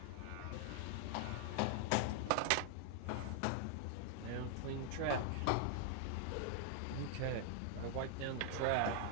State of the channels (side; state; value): both; different; correlation 0.00